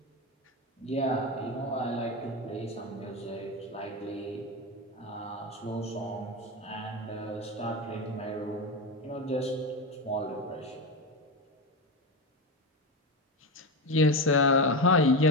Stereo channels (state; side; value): normal; both; correlation 0.17